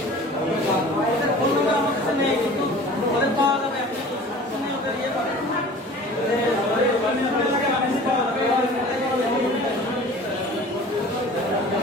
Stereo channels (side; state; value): both; normal; correlation 0.43